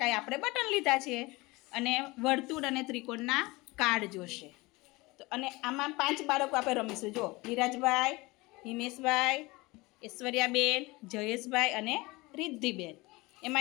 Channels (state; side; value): quieter; right; 22.8 dB